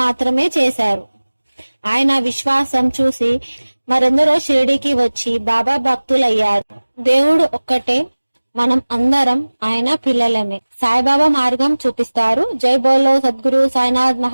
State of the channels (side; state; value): both; inverted; correlation -1.00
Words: చేశారు. ఆయన విశ్వాసం చూసి మరెందరో షిరిడికి వచ్చి బాబా భక్తులయ్యారు. దేవుడు ఒక్కటే, మనం అందరం ఆయన పిల్లలమే. సాయిబాబా మార్గం చూపిస్తారు. జై బోలో సద్గురు సాయినాథ్